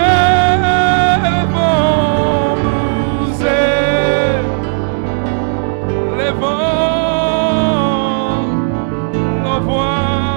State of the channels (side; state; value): left; silent; digital silence